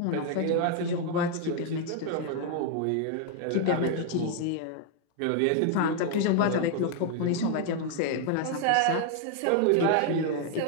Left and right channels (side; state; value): both; different; correlation 0.00